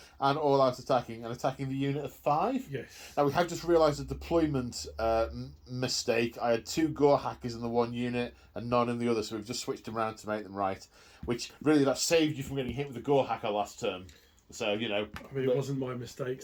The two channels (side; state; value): both; identical; correlation 1.00